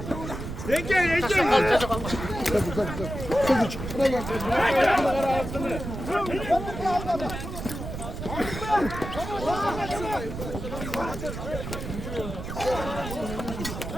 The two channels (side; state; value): right; noise; rumble, 7 dB below the sound